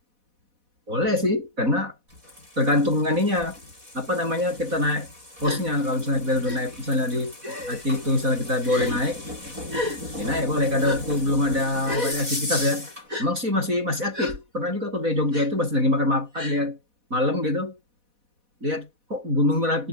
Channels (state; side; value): late; left; 4.1 ms